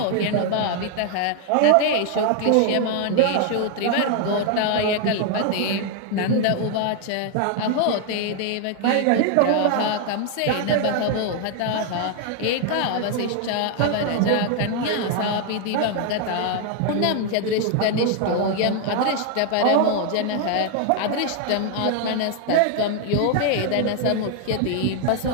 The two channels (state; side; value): different; both; correlation 0.00